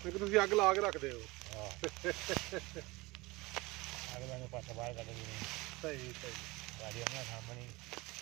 ਕਿ ਤੁਸੀਂ ਅੱਗ ਲਾ ਕੇ ਰੱਖਦੇ ਹੋ ਹਾਂ ਅਗਲਾ ਨੂੰ ਪਾਸਾ ਬਾਹਰ ਕੱਢ ਦਿੰਦੇ ਸਹੀ ਸਹੀ ਗਾੜੀ ਉਹਨਾਂ ਸਾਹਮਣੇ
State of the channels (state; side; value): quieter; left; 22.7 dB